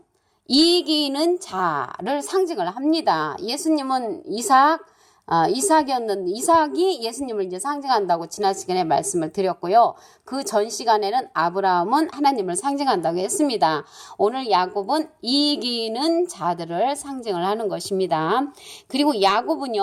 이기는 자를 상징을 합니다. 예수님은 이삭이 예수님을 이제 상징한다고 지난 시간에 말씀을 드렸고요. 그 전 시간에는 아브라함은 하나님을 상징한다고 했습니다. 오늘 야곱은 이기는 자들을 상징을 하는 것입니다. 그리고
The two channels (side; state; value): both; identical; correlation 1.00